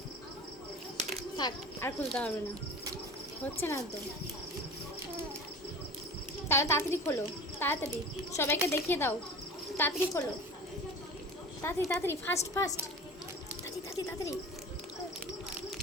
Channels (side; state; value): both; normal; correlation 0.35